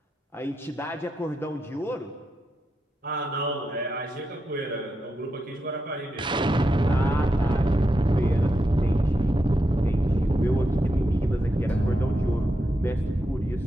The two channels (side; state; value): both; normal; correlation 0.86